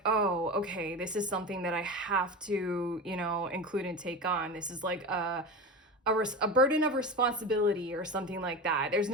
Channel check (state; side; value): normal; both; correlation 0.26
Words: oh, okay, this is something that I have to, include and take on. This is like a burden of responsibility or something like that. There's